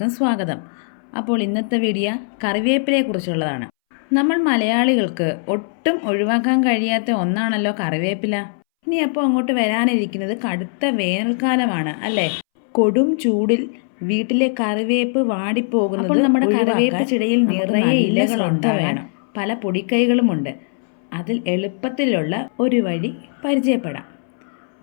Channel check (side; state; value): right; silent; 64 dB below the other